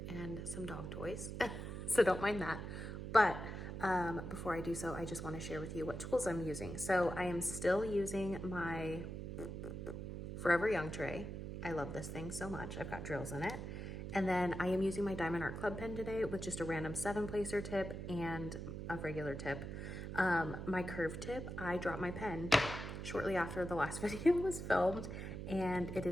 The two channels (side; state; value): right; noise; hum, 6 dB below the sound